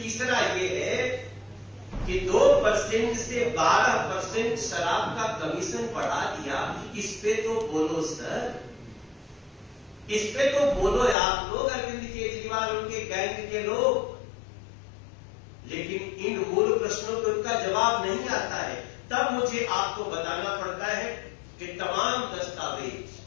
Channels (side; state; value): right; drops out; at 11.2 s